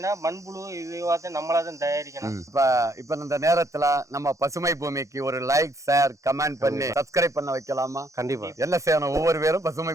மண்புழு இதுவாக நம்மளா தான் தயாரிக்கணும். இப்ப இந்த நேரத்துல நம்ம பசுமை பூமிக்கு ஒரு லைக், ஷேர், கமெண்ட் பண்ணி சப்ஸ்கிரைப் பண்ண வைக்கலாமா? கண்டிப்பா. என்ன செய்யணும்? ஒவ்வொரு பேரும் பசுமை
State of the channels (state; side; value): late; left; 0.15 ms